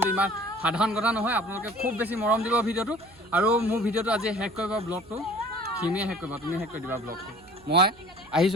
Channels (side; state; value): right; noise; hum, 27 dB below the sound